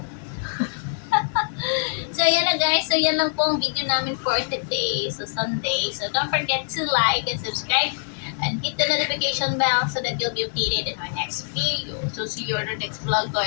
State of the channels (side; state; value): right; silent; digital silence